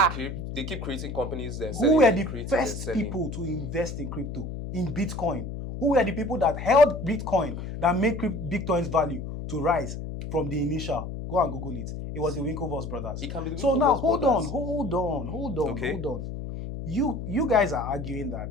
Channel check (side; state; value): left; noise; hum, 7 dB below the sound